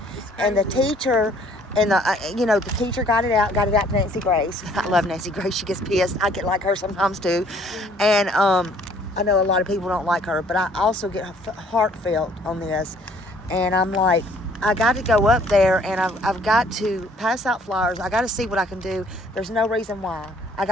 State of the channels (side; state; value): both; normal; correlation 0.59